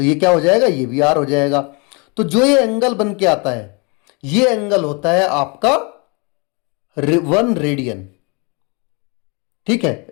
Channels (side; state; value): right; quieter; 31.2 dB